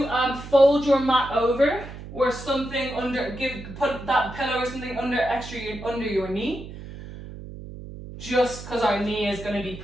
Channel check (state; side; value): noise; right; hum, 12 dB below the sound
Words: fold your mat over or something under, put that pillow or something under your knee. Just because our knee is going to be